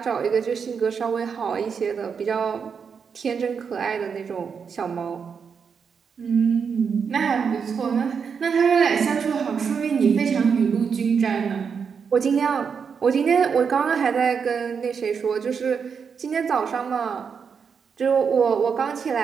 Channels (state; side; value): quieter; left; 6.3 dB